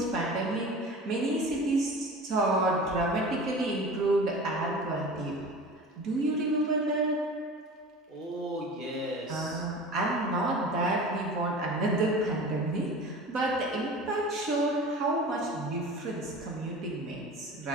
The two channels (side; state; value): both; normal; correlation 0.37